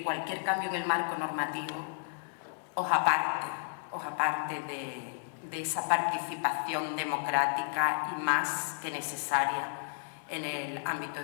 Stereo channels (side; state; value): right; silent; digital silence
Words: cualquier cambio en el marco normativo os aparte de esa participación democrática y más que necesaria en el ámbito